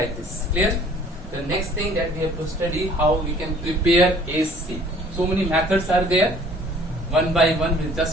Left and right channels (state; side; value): normal; both; correlation 0.54